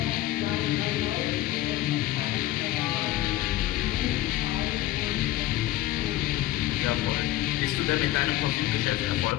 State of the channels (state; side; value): quieter; right; 15.1 dB